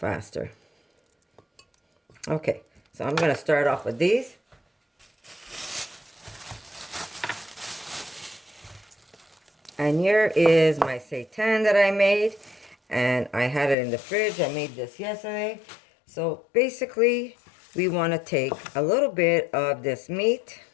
Okay, so I'm gonna start off with these. And here is my seitan that I made, and I had it in the fridge. I made this yesterday. So basically, we want to take a little bit of this meat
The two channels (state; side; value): drops out; right; at 13.8 s